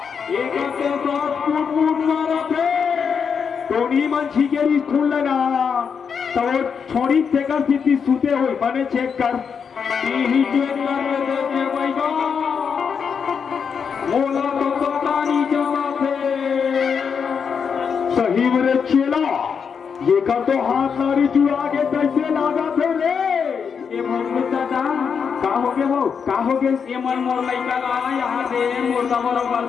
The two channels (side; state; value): right; quieter; 6.5 dB